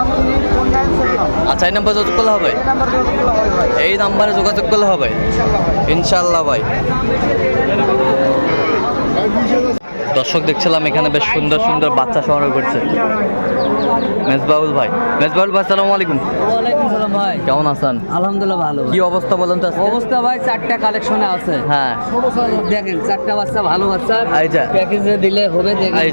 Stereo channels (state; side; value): inverted; both; correlation -1.00